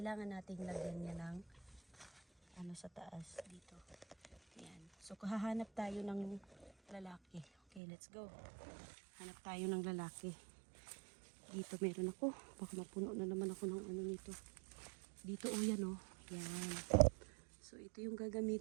nating lagyan niya ng ano sa taas dito. Yan. So hahanap tayo ng lalaki. Okay, let's go. Hanap tayo ng lalaki. Dito meron ako. Baka mapuno na naman ako ng ano nito. Dito o yan o. Yan. So ito yung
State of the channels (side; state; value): left; drops out; at 7.8 s